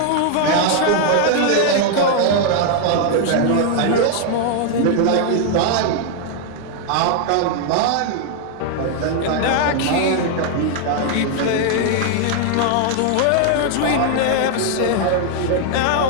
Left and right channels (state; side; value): different; both; correlation 0.00